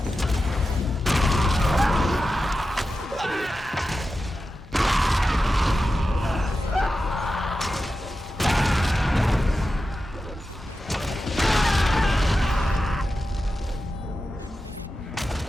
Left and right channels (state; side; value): normal; both; correlation 0.92